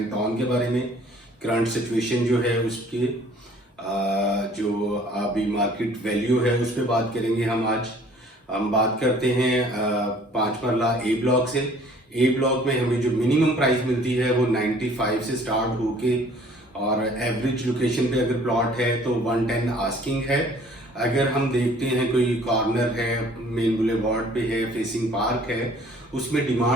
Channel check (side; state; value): both; normal; correlation 0.54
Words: टाउन के बारे में। करंट सिचुएशन जो है उसके जो अभी मार्केट वैल्यू है उस पर बात करेंगे हम बात करते हैं 5 मरला ए ब्लॉक से। ए ब्लॉक में हमें जो मिनिमम प्राइस मिलती है वो 95 से स्टार्ट होके और एवरेज लोकेशन पे अगर प्लॉट है तो 110 आस्किंग है। अगर हम देखते हैं कोई कॉर्नर है, मेन बुलेवार्ड पे है, फेसिंग पार्क है, उसमें